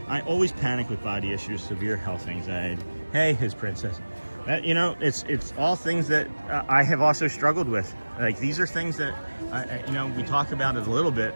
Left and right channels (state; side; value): inverted; both; correlation -1.00